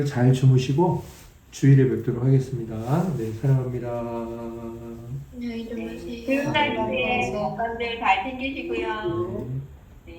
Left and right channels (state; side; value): identical; both; correlation 1.00